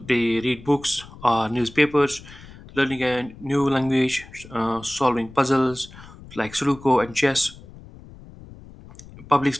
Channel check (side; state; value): left; noise; rumble, 19 dB below the sound